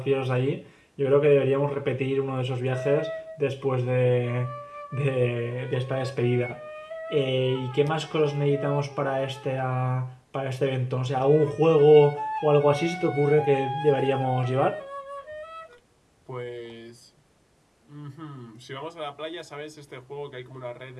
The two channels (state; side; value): identical; both; correlation 1.00